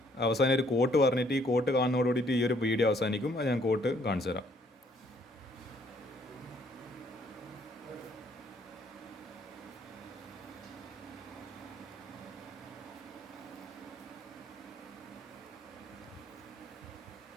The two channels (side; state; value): both; normal; correlation 0.65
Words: അവസാനം ഒരു കോട്ട് പറഞ്ഞിട്ട് ഈ കോട്ട് കാണുന്നതോടുകൂടിയിട്ട് ഈ ഒരു വീഡിയോ അവസാനിക്കും. അത് ഞാൻ കോട്ട് കാണിച്ചു തരാം.